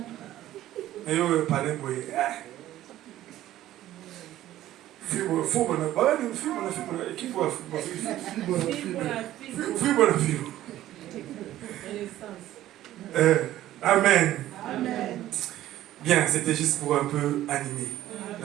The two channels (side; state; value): left; quieter; 13.8 dB